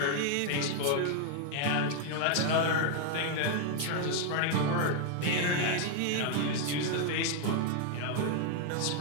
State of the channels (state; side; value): different; both; correlation 0.00